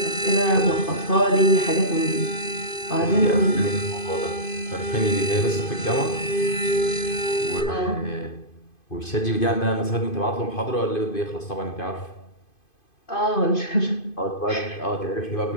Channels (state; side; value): late; right; 2.5 ms